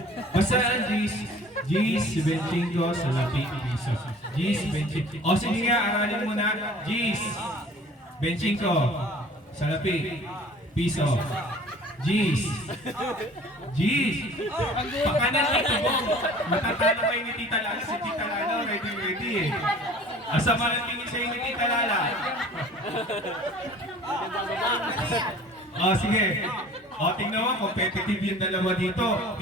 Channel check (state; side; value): normal; both; correlation 0.47